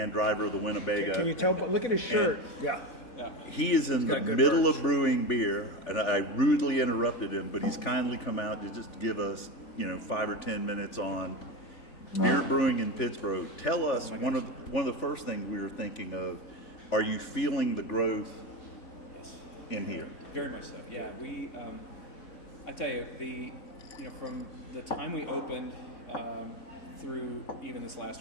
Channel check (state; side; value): late; right; 3.4 ms